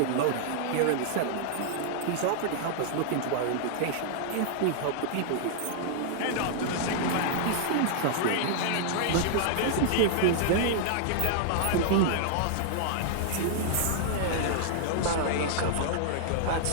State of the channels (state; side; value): different; both; correlation -0.01